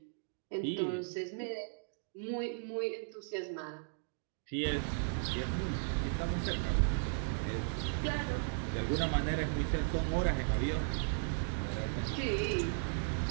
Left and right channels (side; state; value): left; silent; digital silence